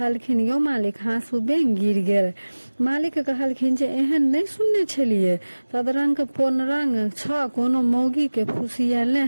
यौ मालिक हाँसू बेंग गिर गेल। मालिक कहलखिन जे एहन नहीं सुनने छलिए, तदरंग पोनरंग छ कोनो मौगी के फुसियेले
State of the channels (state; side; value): inverted; both; correlation -1.00